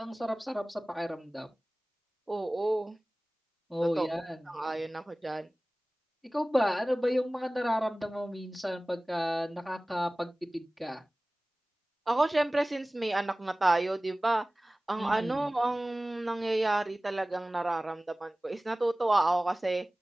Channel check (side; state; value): both; normal; correlation 0.98